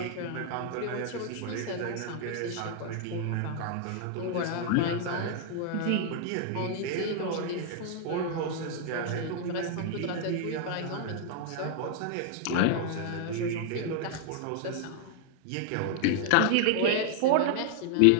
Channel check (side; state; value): both; different; correlation 0.00